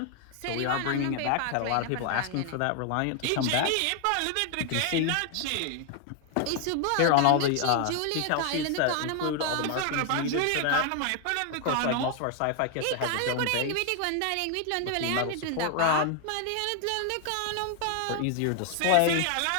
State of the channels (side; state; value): both; different; correlation 0.00